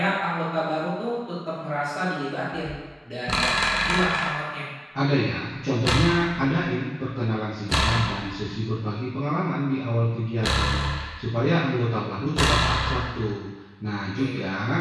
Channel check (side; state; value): both; identical; correlation 1.00